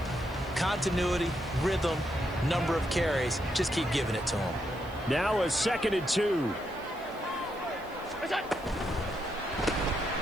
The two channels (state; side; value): noise; right; hiss, 25 dB below the sound